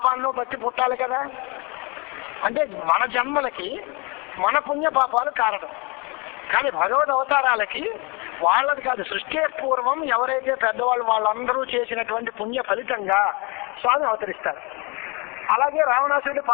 బట్టి పుట్టాలి కదా. అంటే మన జన్మలకి మన పుణ్య పాపాలు కారణం. కానీ భగవద్ అవతారాలకి వాళ్ళది కాదు, సృష్టి పూర్వం ఎవరైతే పెద్దవాళ్ళు వాళ్ళందరూ చేసినటువంటి పుణ్య ఫలితంగా స్వామి అవతరిస్తారు. అలాగే రావణాసురుడి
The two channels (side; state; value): right; quieter; 29.7 dB